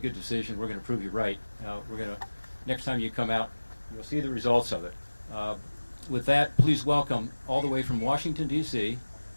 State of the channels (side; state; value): both; inverted; correlation -1.00